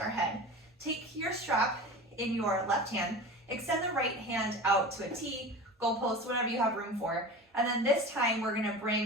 head. Take your strap in your left hand, extend the right hand out to a T, goalpost, whatever you have room for. And then this time we're gonna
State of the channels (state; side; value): normal; both; correlation 0.33